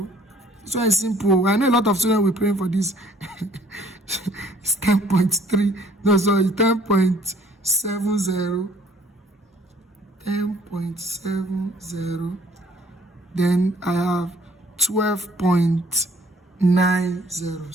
So it's simple. I know a lot of students will pray for this. It's 10.3. No, sorry, 10.70. 10.70. Then I have 12.90.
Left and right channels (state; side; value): normal; both; correlation 0.59